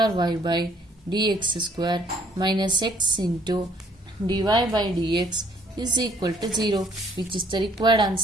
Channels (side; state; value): both; normal; correlation 0.63